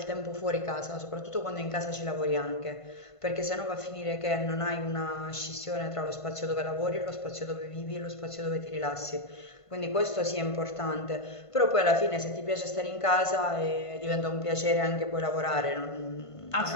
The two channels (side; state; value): right; late; 1.5 ms